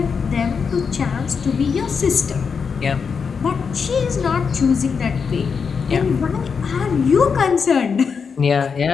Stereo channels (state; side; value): quieter; right; 5.9 dB